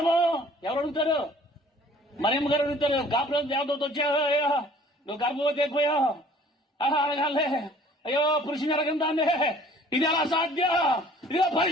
ఎవరు అడుగుతారు? మరియమ్మ గారు అడుగుతారు. గాబ్రియెలు దేవదూత వచ్చాయో, నువ్వు గర్భవతి అయిపోయావు, అడగాలే, అయ్యో పురుషుని అడగందాన్ని, ఇది ఎలా సాధ్యం? ఇదిగో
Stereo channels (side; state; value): both; normal; correlation 0.53